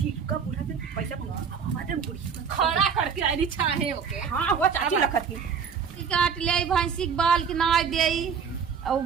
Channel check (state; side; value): quieter; left; 6.6 dB